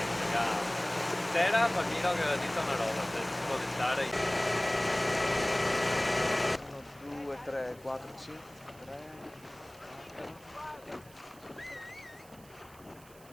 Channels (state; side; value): noise; right; hiss, 24 dB below the sound